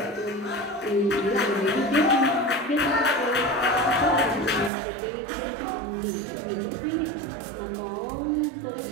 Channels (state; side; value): drops out; left; at 4.7 s